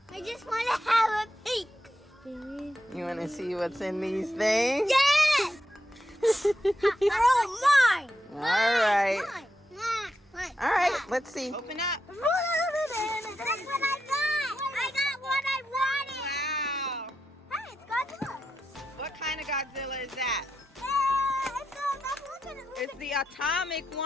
I just want to have a peek. You want to see what's in these things? Yes! They're all mine! All right. Mine. All right, let's see. Open up. That's what I got! I got what I wanted! Wow. Hey, it's Godzilla! What kind of Godzilla is that? Look at it! It's the atomic one.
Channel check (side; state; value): both; normal; correlation 0.86